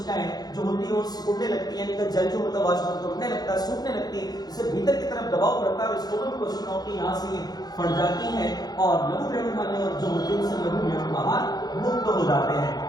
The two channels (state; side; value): late; right; 0.19 ms